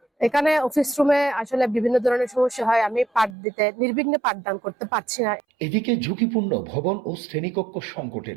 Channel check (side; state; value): left; drops out; at 3.4 s